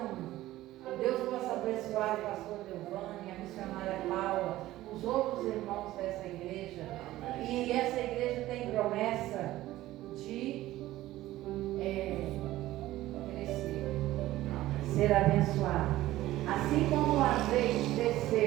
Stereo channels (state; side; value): quieter; left; 15.7 dB